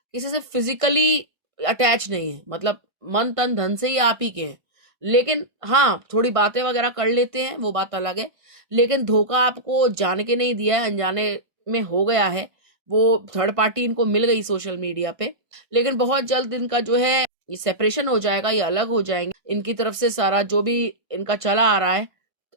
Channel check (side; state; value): left; late; 1.5 ms